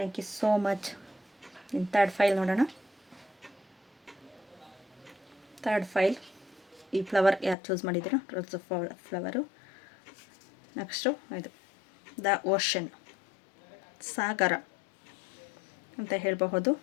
you so much. ಇನ್ನು ಥರ್ಡ್ ಫೈಲ್ ನೋಡೋಣ. ಥರ್ಡ್ ಫೈಲ್, ಈ ಫ್ಲವರ್ ಯಾರು ಚೂಸ್ ಮಾಡಿದ್ದೀರೋ, ರೋಸ್ ಫ್ಲವರು. ನೆಕ್ಸ್ಟು ಇದು ದ ಓಷನ್, ಸಾಗರ ಅಂತ ಹೇಳಬಹುದು.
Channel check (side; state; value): right; drops out; at 7.6 s